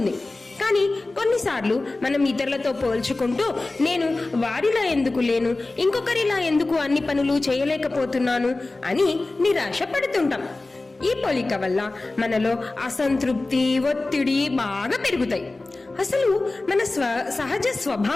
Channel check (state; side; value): quieter; right; 3.2 dB